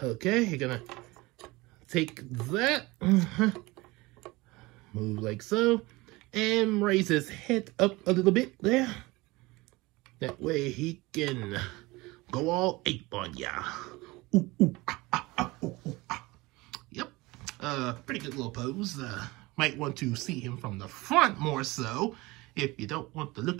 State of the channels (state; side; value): quieter; left; 22.0 dB